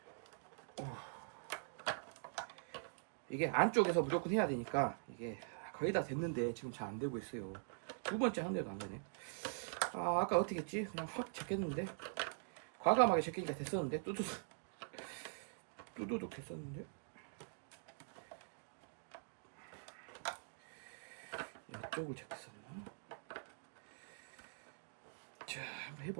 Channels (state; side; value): silent; left; digital silence